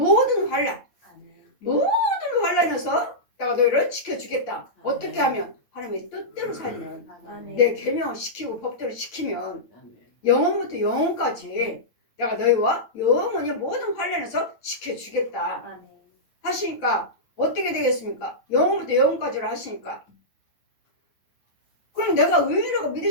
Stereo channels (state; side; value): late; right; 8.9 ms